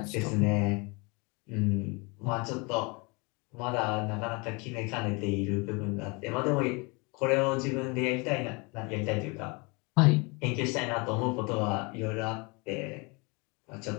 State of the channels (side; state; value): right; quieter; 29.2 dB